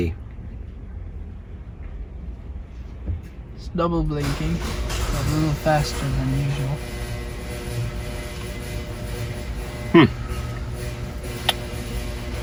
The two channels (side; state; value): both; identical; correlation 1.00